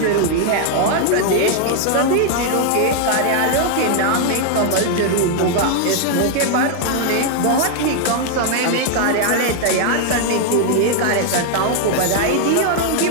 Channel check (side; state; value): both; different; correlation 0.00